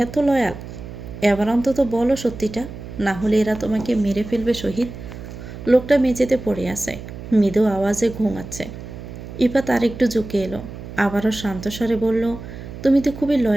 এত লয়াল। এবার অন্তত বলো সত্যিটা, না হলে এরা তোমাকে মেরে ফেলবে শহীদ। লোকটা মেঝেতে পড়ে আছে, মৃদু আওয়াজে ঘুমাচ্ছে। ইফাত আর একটু ঝুঁকে এলো। আবারও শান্তস্বরে বলল, তুমি তো খুবই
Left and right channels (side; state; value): right; noise; hum, 12 dB below the sound